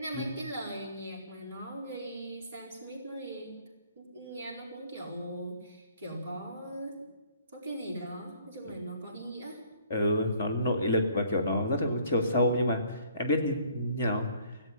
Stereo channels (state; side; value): inverted; both; correlation -0.58